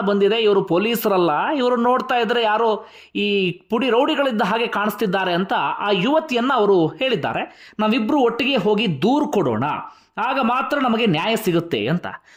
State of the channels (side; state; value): both; identical; correlation 1.00